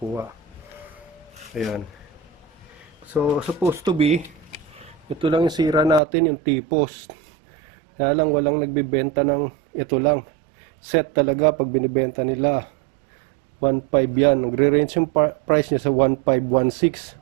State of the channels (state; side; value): drops out; left; at 6.0 s